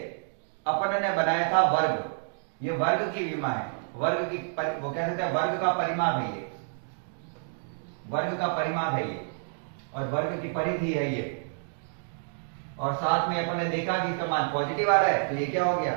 अपन ने बनाया था वर्ग, ये वर्ग की विमा है, वर्ग की वो कह सकते हैं वर्ग का परिमाप है ये, वर्ग का परिमाप है ये, और वर्ग की परिधि है ये। और साथ में अपन ने देखा कि इसका मान पॉजिटिव आ रहा है, तो ये क्या हो गया?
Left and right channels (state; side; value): silent; left; digital silence